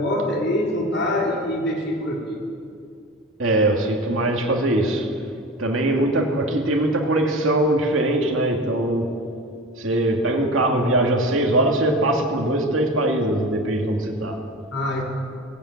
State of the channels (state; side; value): normal; both; correlation 0.32